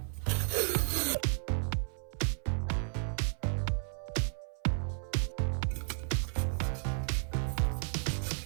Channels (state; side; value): silent; left; 56 dB below the other